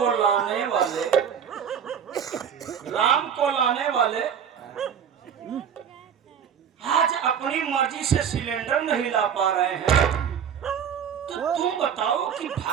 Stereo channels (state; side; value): quieter; left; 8.1 dB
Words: लाने वाले आज अपनी मर्जी से सिलेंडर नहीं ला पा रहे हैं, तो तुम बताओ कि